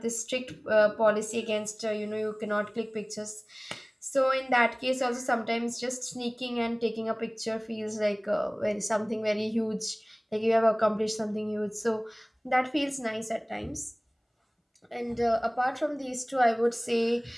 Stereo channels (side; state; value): both; identical; correlation 1.00